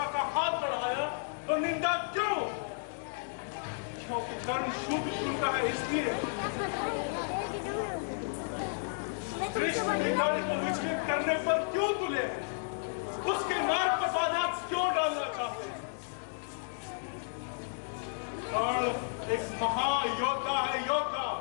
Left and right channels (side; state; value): right; silent; digital silence